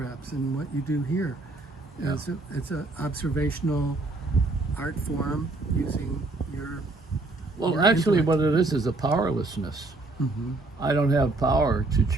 and what you do here. Yeah. It's an observational art form using your. Well, your actually, intellect. what it is a powerlessness. Mm-hmm. I don't have power to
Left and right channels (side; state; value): left; quieter; 3.1 dB